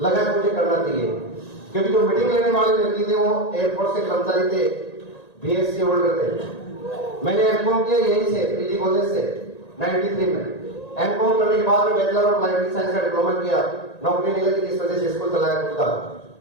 लगा कि मुझे करना चाहिए, क्योंकि जो मीटिंग लेने वाले व्यक्ति थे वो एयरफोर्स के कर्मचारी थे, BSc होल्डर थे। मैंने एमकॉम किया यहीं से, पीजी कॉलेज से 93 में। एमकॉम करने के बाद में बैचलर ऑफ लाइफ साइंस का डिप्लोमा किया, नौकरी नहीं लगी, इस वजह से स्कूल चलाया खुद का।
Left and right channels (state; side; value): late; right; 1.9 ms